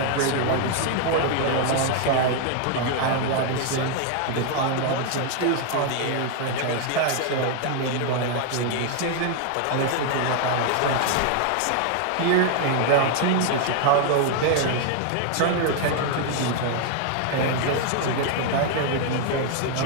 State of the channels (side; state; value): both; different; correlation 0.00